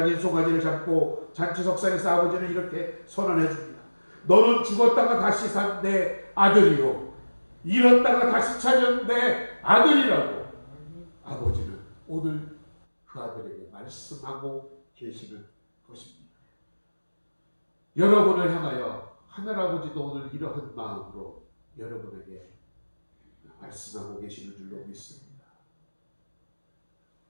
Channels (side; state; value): both; inverted; correlation -1.00